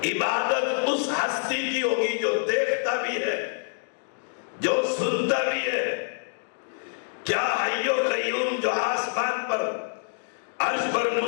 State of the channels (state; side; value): silent; right; digital silence